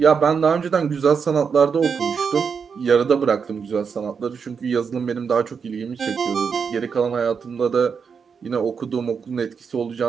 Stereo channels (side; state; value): left; quieter; 6.1 dB